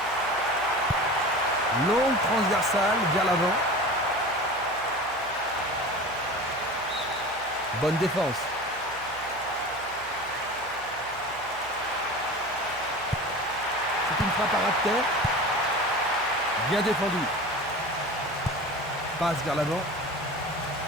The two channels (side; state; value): right; noise; hum, 22 dB below the sound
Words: Longue transversale vers l'avant. Bonne défense. C'est une frappe à ras de terre. Bien défendu. Passe vers l'avant.